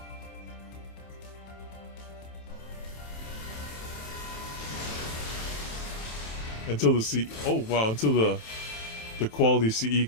Until the until the quality CE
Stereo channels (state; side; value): late; right; 27 ms